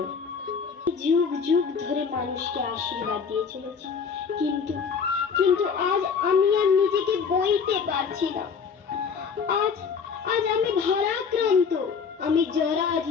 যুগ যুগ ধরে মানুষকে আশীর্বাদ দিয়ে চলেছে, কিন্তু কিন্তু আজ আমি আর নিজেকে বইতে পারছি না। আজ আজ আমি ভারাক্রান্ত, আমি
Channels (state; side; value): quieter; right; 6.0 dB